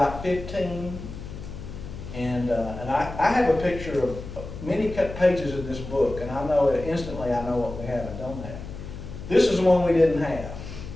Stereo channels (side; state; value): left; noise; hum, 11 dB below the sound